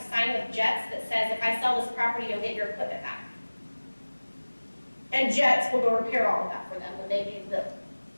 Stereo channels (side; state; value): both; inverted; correlation -1.00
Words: sign with Jets that says if I sell this property, you'll get your equipment back. And Jets will go repair all of that for them when they do the,